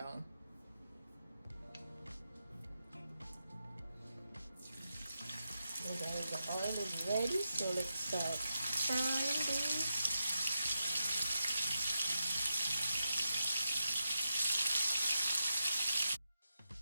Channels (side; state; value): both; inverted; correlation -0.87